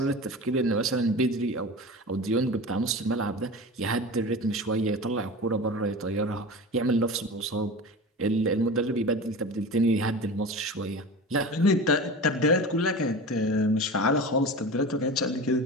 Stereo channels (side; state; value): both; normal; correlation 0.31